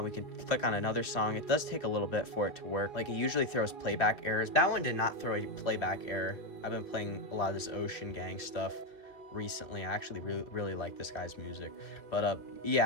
We can click on another song. It does take a little bit for it to work. Like, it usually throws playback errors. That one did not throw a playback error. I've been playing a lot of this Ocean Gang stuff recently. I actually really like this guy's music. But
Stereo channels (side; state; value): right; late; 2.7 ms